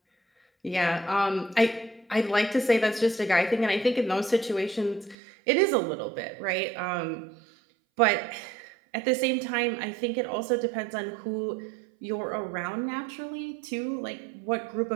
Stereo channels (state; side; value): drops out; left; at 5.2 s